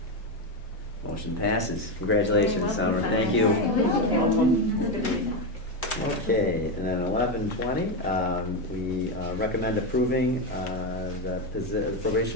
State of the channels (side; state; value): both; normal; correlation 0.11